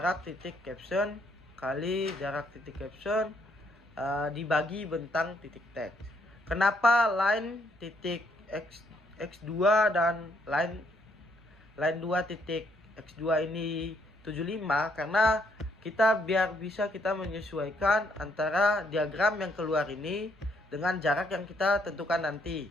titik caption kali jarak titik caption dibagi bentang titik teks. Kenapa line titik x2 dan line 2 titik x2 ini 75? Karena biar bisa kita menyesuaikan antara diagram yang keluar ini dengan jarak yang kita tentukan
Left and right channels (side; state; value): both; normal; correlation 0.71